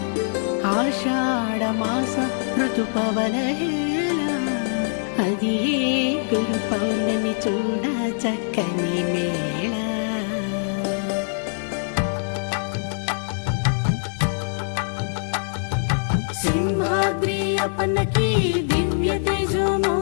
ఆషాఢమాస ఋతుపవనహేళ అది గురు పౌర్ణమి చూడ చక్కని మేళ సింహాద్రి అప్పన్నకి దివ్య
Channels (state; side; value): silent; right; 61 dB below the other